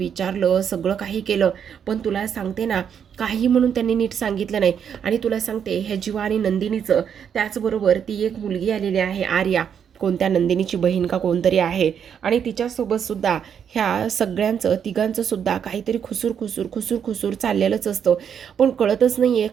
सगळं काही केलं, पण तुला सांगते ना काही म्हणून त्यांनी नीट सांगितलं नाही. आणि तुला सांगते, ह्या जीवा आणि नंदिनीचं, त्याचबरोबर ती एक मुलगी आलेली आहे आर्या, कोणत्या नंदिनीची बहीण का कोणतरी आहे, आणि तिच्यासोबत सुद्धा ह्या सगळ्यांचं तिघांचं सुद्धा काहीतरी खुसूर चाललेलंच असतं, पण कळतच नाही आहे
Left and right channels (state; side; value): quieter; left; 8.0 dB